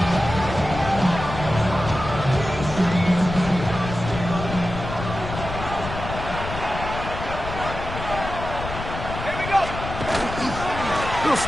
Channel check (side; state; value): left; noise; rumble, 8 dB below the sound